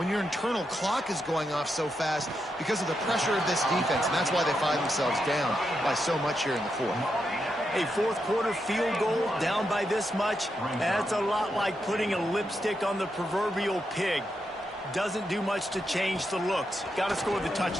your internal clock is going off so fast because of the pressure of this defense, and that's why they find themselves down by so much here in the fourth. A fourth quarter field goal down by this much, that's a lot like putting a lipstick on the proverbial pig. Doesn't do much to change the looks. Got to score the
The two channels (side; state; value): both; normal; correlation 0.84